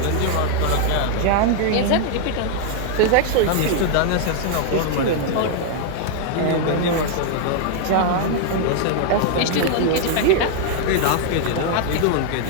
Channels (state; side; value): different; both; correlation 0.00